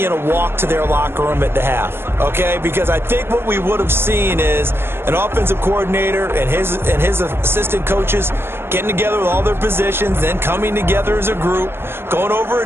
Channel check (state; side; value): late; left; 0.11 ms